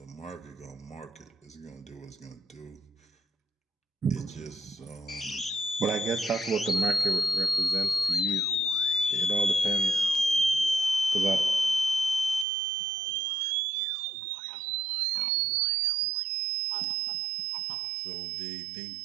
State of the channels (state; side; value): drops out; left; at 12.5 s